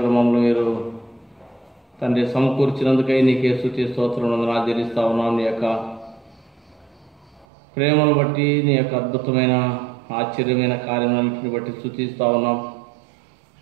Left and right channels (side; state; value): left; drops out; at 7.5 s